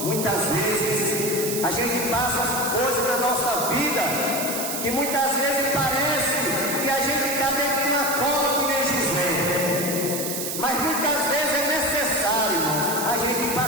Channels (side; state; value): right; noise; hiss, 4 dB below the sound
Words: muitas vezes a gente passa coisas na nossa vida que muitas vezes parece que a gente está dentro de uma cova, que nem José. Mas muitas vezes é necessário, irmãos, a gente ir para